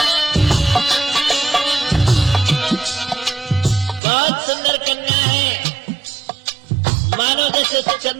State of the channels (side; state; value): left; drops out; at 4.0 s